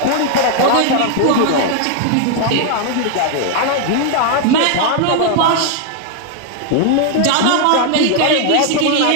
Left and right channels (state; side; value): different; both; correlation 0.00